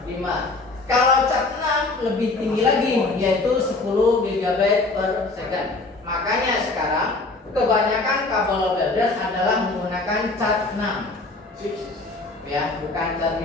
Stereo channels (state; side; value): quieter; right; 3.3 dB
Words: 5. Kalau cat 6 lebih tinggi lagi, yaitu 10 GB per second. Makanya sekarang kebanyakan kabel builder adalah menggunakan cat 6. Ya, bukan cat